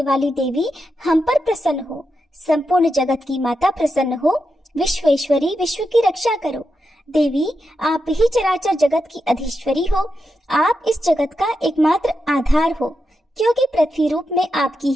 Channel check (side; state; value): both; normal; correlation 0.87